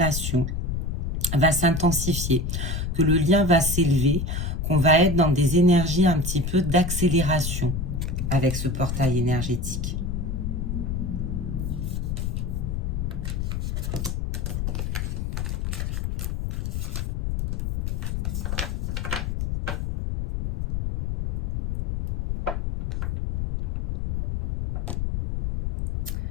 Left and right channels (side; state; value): left; noise; rumble, 1 dB below the sound